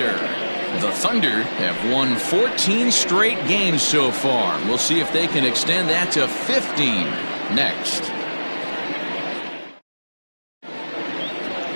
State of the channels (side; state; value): both; inverted; correlation -1.00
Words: The Thunder have won 14 straight games so far. We'll see if they can extend that to 15 next.